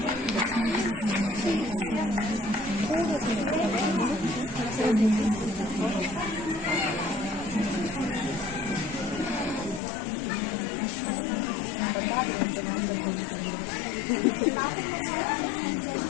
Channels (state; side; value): drops out; right; at 9.8 s